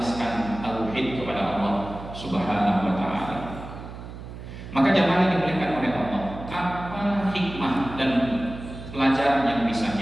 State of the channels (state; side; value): noise; right; hum, 12 dB below the sound